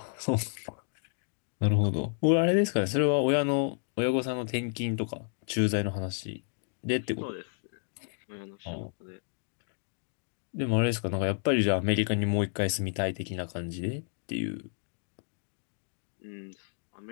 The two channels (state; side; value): silent; right; digital silence